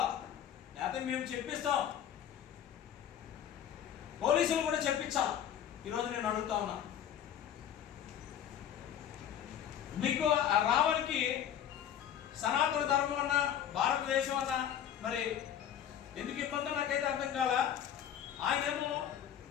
లేకపోతే మేము చెప్పిస్తాం, పోలీసులు కూడా చెప్పించాలి. ఈరోజు నేను అడుగుతా ఉన్నా, మీకు రావణ్కి సనాతన ధర్మం అన్నా భారతదేశం అన్నా మరి ఎందుకు ఇబ్బంది నాకైతే అర్థం కాల. ఆయనేమో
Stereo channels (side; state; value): right; quieter; 9.7 dB